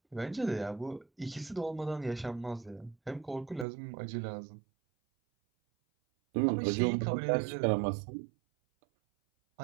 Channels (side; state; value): left; drops out; at 3.7 s